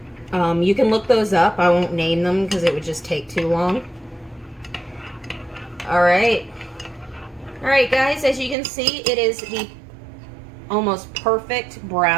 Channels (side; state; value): left; drops out; at 8.6 s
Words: You can look those up. I won't name them because it would just take too long. All right, guys, as you can see, it is the almost perfect